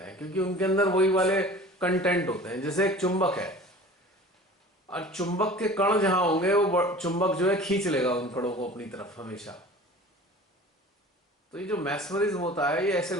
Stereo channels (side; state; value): both; normal; correlation 0.42